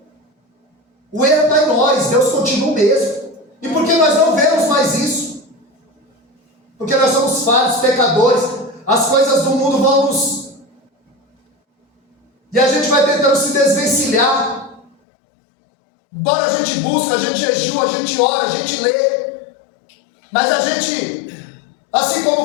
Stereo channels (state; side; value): drops out; right; at 14.9 s